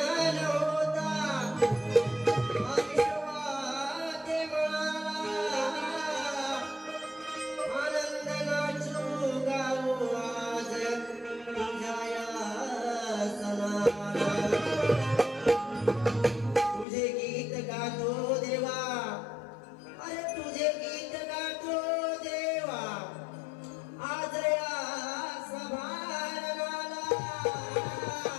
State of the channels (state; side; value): drops out; right; at 16.9 s